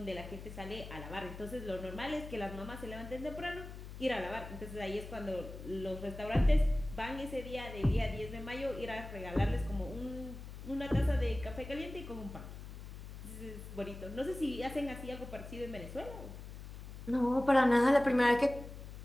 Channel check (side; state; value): left; noise; hum, 11 dB below the sound